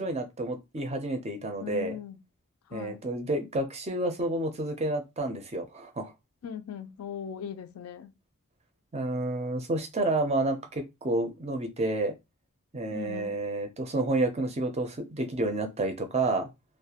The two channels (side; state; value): both; normal; correlation 0.31